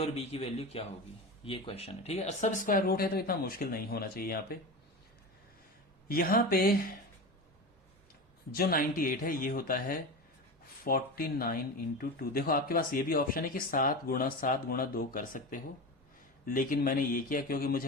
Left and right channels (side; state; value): both; normal; correlation 0.25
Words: बी की वैल्यू क्या होगी, ये क्वेश्चन है। ठीक है, सब स्क्वायर रूट है तो इतना मुश्किल नहीं होना चाहिए। यहां पे जो 98 है ये होता है 49 इंटू 2। देखो आपके पास ये भी ऑप्शन है कि 7 गुणा 7 गुणा 2 कर सकते हो, लेकिन मैंने ये किया क्योंकि